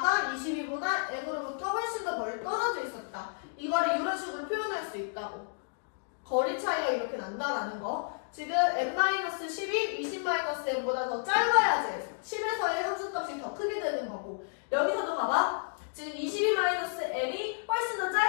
22보다 m으로부터 훨씬 더 멀리 떨어져 있었다. 이거를 이런 식으로 표현할 수 있다고. 거리 차이가 이렇게 난다라는 거. 지금 m-10이 20-m보다 더 짧아야지 10에서의 함수값이 더 크게 되는 거고, 여기서도 봐봐. 지금 22-m이 훨씬 더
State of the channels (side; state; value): right; silent; digital silence